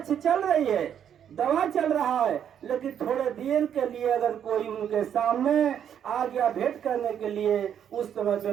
चल रही है, दवा चल रहा है, लेकिन थोड़े देर के लिए अगर कोई उनके सामने आ गया भेंट करने के लिए, उस समय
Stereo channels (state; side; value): quieter; left; 9.1 dB